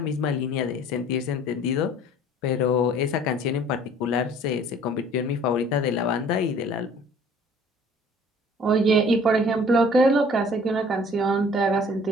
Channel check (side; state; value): both; normal; correlation 0.52